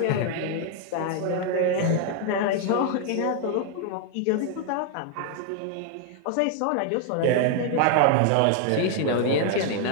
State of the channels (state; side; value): different; both; correlation 0.00